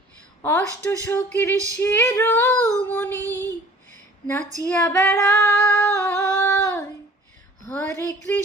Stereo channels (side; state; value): both; normal; correlation 0.49